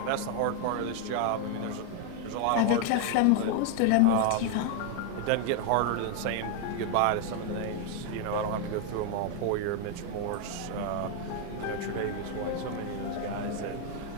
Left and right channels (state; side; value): different; both; correlation 0.01